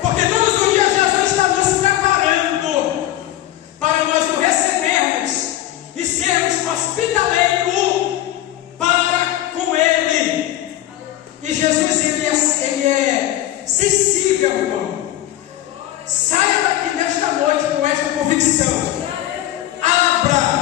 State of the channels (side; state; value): right; quieter; 14.1 dB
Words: porque todos os dias Jesus está nos preparando para nós o recebermos e sermos hospitaleiros para com Ele. E Jesus, ele é sensível, irmão. Saia daqui nesta noite com esta convicção. Abra